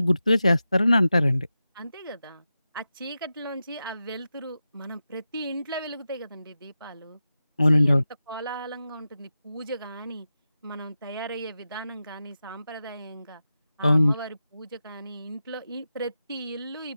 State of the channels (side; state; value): both; inverted; correlation -0.91